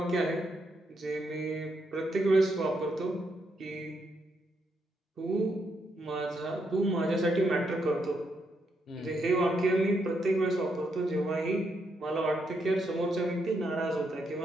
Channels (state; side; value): normal; both; correlation 0.79